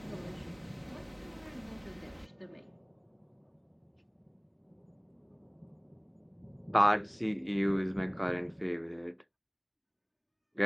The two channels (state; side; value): identical; both; correlation 1.00